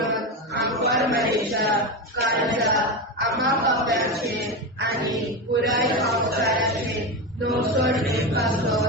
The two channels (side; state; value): both; normal; correlation 0.17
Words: आंकवार मरेच्या काळजा आम्हा पाप्यांचे आनी पुराय संवसाराचे नवसोडणे